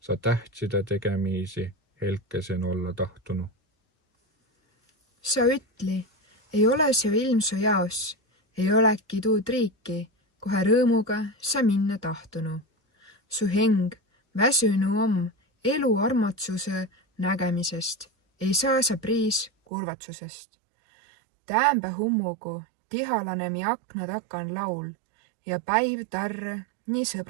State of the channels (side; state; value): left; drops out; at 19.5 s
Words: Sa tähtside tegemiisi helkesen olla tahtunu. Sa ütli, ei ole see ilm su jaos, ei oleki tuud riiki, kohe rõõmuga sa minna tahtunu. Su heng väsünu om elu armatsuse nägemisest, ei saa sa priis kurvatsusest. Täämbä hummugu tihalane mi akna takan laul ja päiv tarre nii